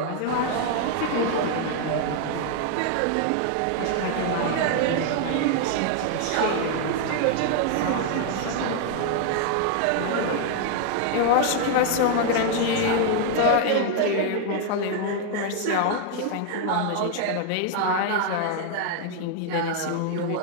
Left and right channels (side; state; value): both; different; correlation 0.00